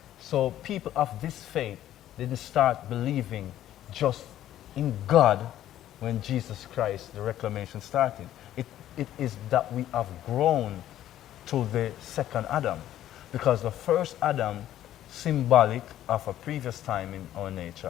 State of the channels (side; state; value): right; quieter; 12.5 dB